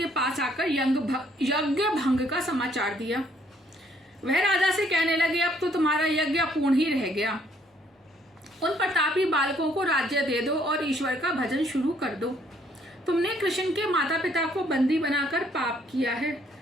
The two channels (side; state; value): both; normal; correlation 0.66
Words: पास आकर यज्ञ भंग का समाचार दिया। वह राजा से कहने लगे, अब तो तुम्हारा यज्ञ अपूर्ण ही रह गया। उन प्रतापी बालकों को राज्य दे दो और ईश्वर का भजन शुरू कर दो। तुमने कृष्ण के माता पिता को बंदी बनाकर पाप किया है,